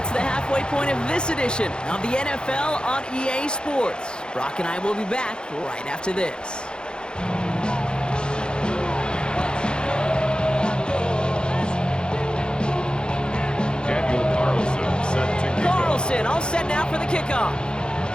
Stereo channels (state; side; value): late; right; 0.049 ms